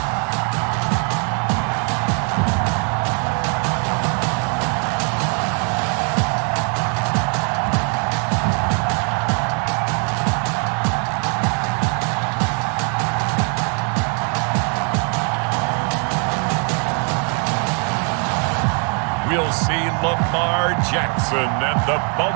We'll see Lamar Jackson and the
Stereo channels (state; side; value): quieter; left; 40.0 dB